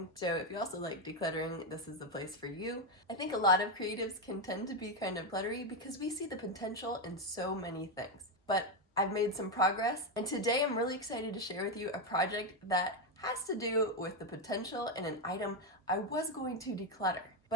so if you also like decluttering, this is the place for you. I think a lot of creatives can tend to be kind of cluttery because we see the potential in so many things. But I've made some progress, and today I'm really excited to share with you a project that has to do with the potential in an item I was going to declutter.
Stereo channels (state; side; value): normal; both; correlation 0.06